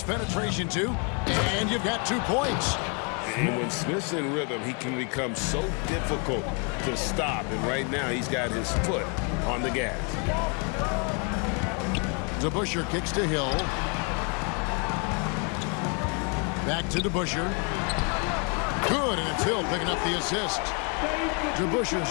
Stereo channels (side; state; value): right; quieter; 36.4 dB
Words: penetration, too, and you've got 2 points. And when Smith's in rhythm, he can become so difficult to stop. And right now, he's got his foot on the gas. DeBusschere kicks to Hill. Back to DeBusschere. Good, and it's Hill picking up the assist.